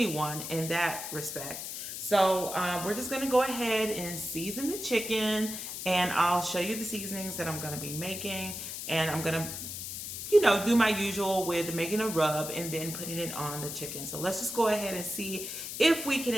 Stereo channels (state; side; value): noise; left; hiss, 7 dB below the sound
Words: in that respect. So we're just gonna go ahead and season the chicken, and I'll show you the seasonings that I'm gonna be making, and I'm gonna do my usual with making a rub and then putting it on the chicken. So let's just go ahead and see if we can